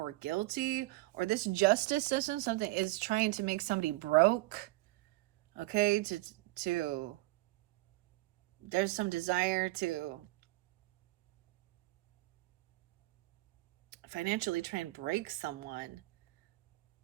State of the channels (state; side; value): quieter; left; 20.5 dB